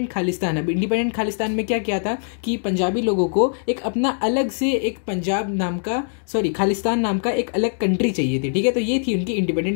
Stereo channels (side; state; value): right; silent; digital silence